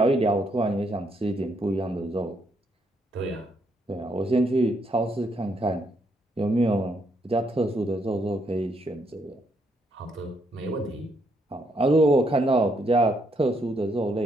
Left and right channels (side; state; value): both; normal; correlation 0.75